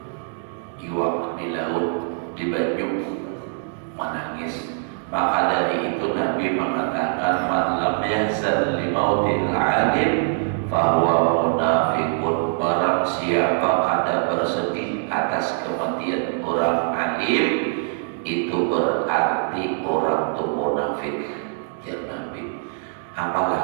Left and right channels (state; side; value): silent; left; digital silence